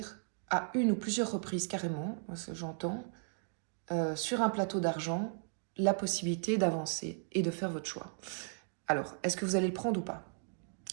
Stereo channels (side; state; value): left; silent; 54 dB below the other